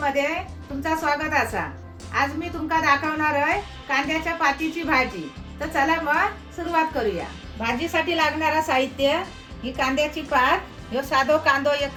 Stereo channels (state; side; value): identical; both; correlation 1.00